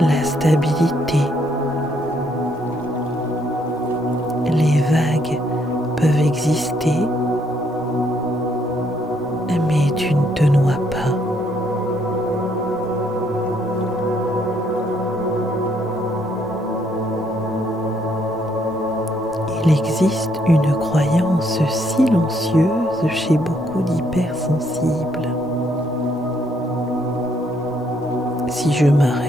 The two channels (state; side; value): normal; both; correlation 0.71